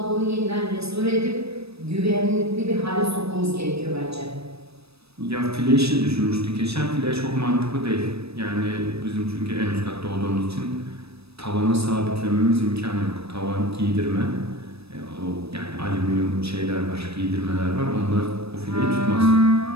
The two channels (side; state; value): left; late; 0.78 ms